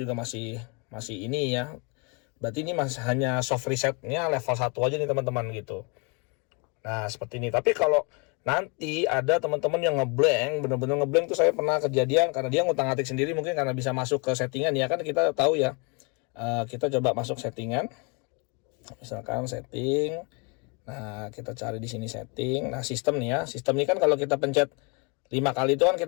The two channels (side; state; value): right; quieter; 32.0 dB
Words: masih ini ya, berarti ini masih hanya soft resetnya level 1 aja nih teman-teman gitu. Nah seperti ini. Tapi kalau nanti ada teman-teman yang ngeblank, bener-bener ngeblank tuh, saya pernah kejadian karena dia ngutang-atik sendiri, mungkin karena bisa masuk ke settingan ya kan, kita tahu ya. Kita coba masuk settingan, misalkan setting. Nah kita cari di sini setting. Nah sistem nih ya, sistem ini kan kalau kita pencet 5 kali itu kan